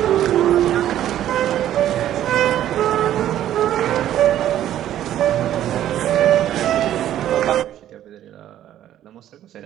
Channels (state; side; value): quieter; left; 11.9 dB